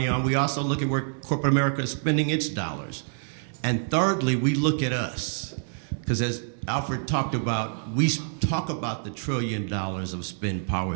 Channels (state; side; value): silent; left; digital silence